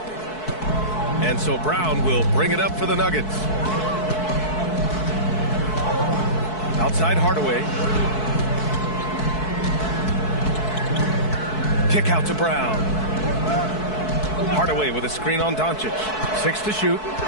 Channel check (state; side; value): late; right; 4.6 ms